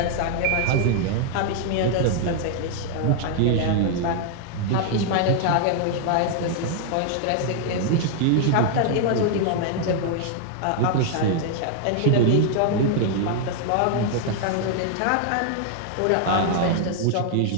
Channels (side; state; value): both; different; correlation 0.00